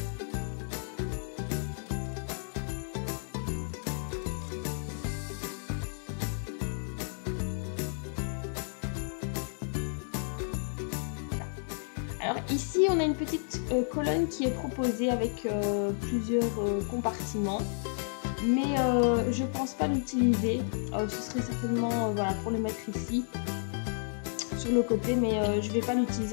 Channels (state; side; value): silent; right; digital silence